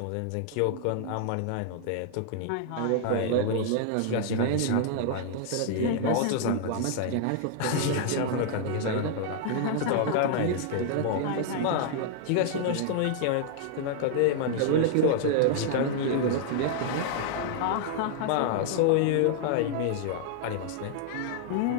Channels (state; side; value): different; both; correlation 0.00